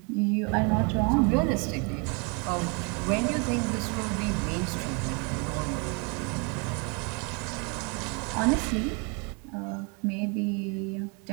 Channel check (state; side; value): quieter; left; 33.7 dB